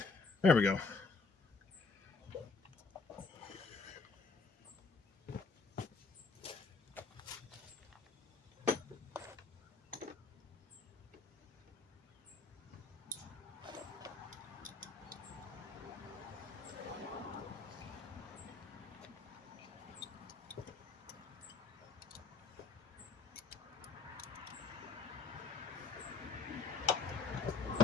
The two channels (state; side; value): quieter; right; 4.3 dB